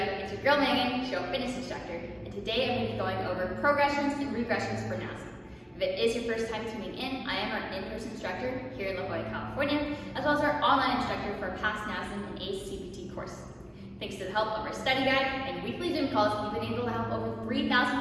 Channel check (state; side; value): identical; both; correlation 1.00